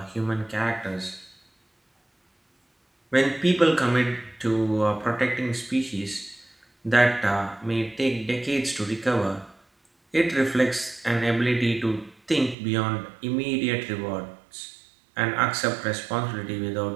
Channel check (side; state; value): left; drops out; at 12.6 s